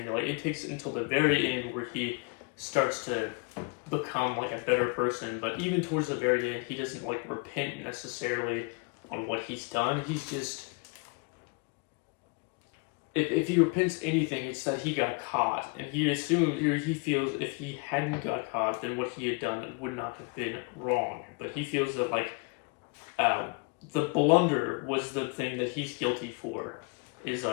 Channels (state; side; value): quieter; right; 32.3 dB